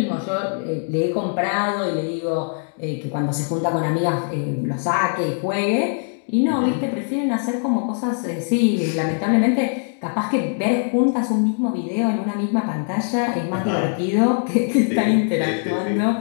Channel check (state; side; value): silent; right; 58 dB below the other